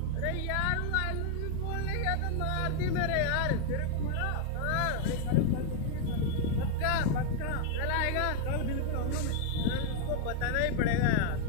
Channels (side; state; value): both; different; correlation 0.00